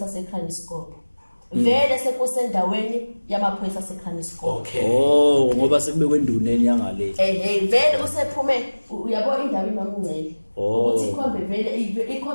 aseKaliscope vele sekusendaweni yamaphoyisa aseKranskop. Okay. Oh ngoba sekubekwe enduneni yangale. Vele usephume uyabo indawo iMamungcele. Oh. Ukuthi ikhombe vele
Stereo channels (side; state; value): both; inverted; correlation -1.00